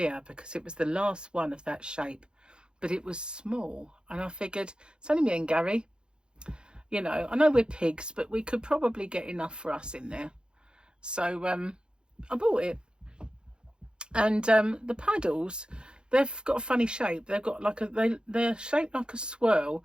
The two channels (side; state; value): left; late; 0.050 ms